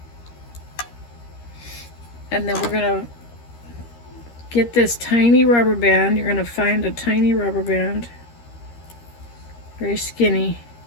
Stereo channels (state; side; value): late; right; 13 ms